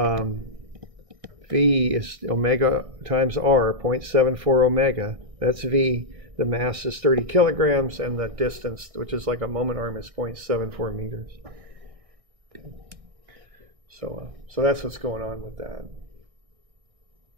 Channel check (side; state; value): left; late; 1.6 ms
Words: v is omega times r, 0.74 omega. That's v. The mass is 30 kilograms, and the distance, which is like a moment arm, is 0.74 meters. Okay. So that's what's going on with that.